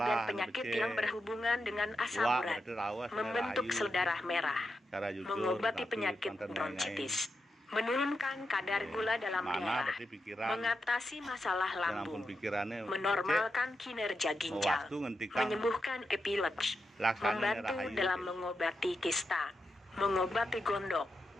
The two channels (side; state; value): both; normal; correlation 0.87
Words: penyakit yang berhubungan dengan asam urat, membentuk sel darah merah, mengobati penyakit bronkitis, menurunkan kadar gula dalam darah, mengatasi masalah lambung, menormalkan kinerja ginjal, menyembuhkan epilepsi, membantu dalam mengobati kista, mengobati gondok,